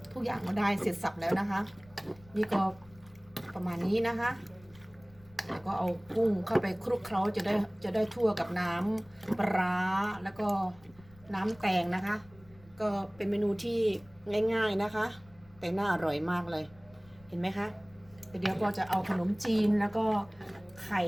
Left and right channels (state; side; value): noise; left; rumble, 25 dB below the sound